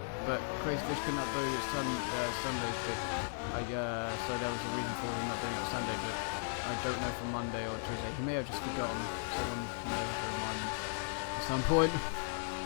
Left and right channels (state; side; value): silent; right; 53 dB below the other